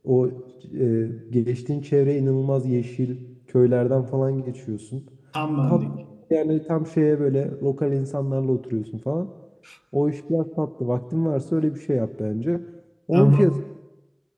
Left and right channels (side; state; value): both; identical; correlation 1.00